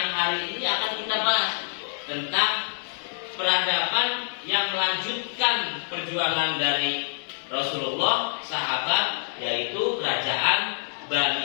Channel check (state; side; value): silent; right; digital silence